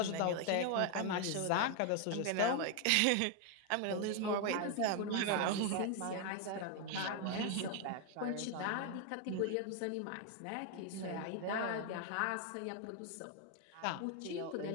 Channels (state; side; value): different; both; correlation 0.00